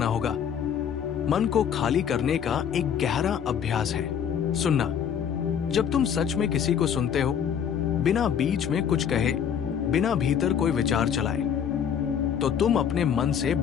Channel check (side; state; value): right; quieter; 8.2 dB